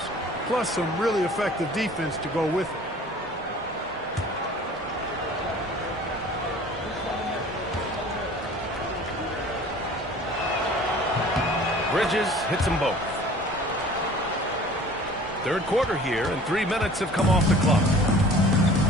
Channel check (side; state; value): both; normal; correlation 0.47